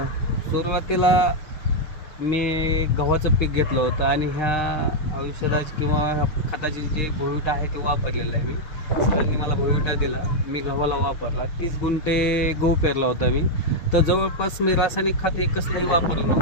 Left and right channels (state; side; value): late; right; 6.5 ms